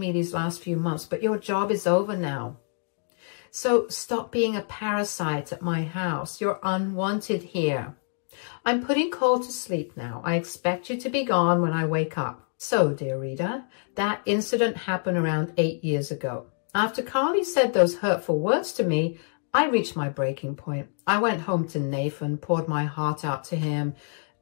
these last few months, but your job is over now. So stop being a parasite at my house. You're unwanted here. I'm putting Cole to sleep now. I expect you to be gone when I wake up." So, dear reader, that incident happened around 8 years ago. After Carly said those hurtful words to me, I reached my breaking point. I went home to Nathan, poured my heart out to him,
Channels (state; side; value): silent; right; 61 dB below the other